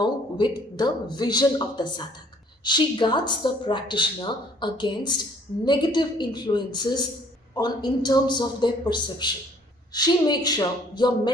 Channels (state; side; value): normal; both; correlation 0.59